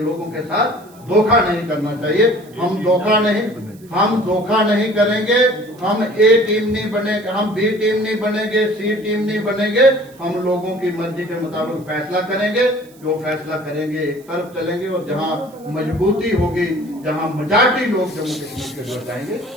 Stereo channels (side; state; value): right; noise; hiss, 27 dB below the sound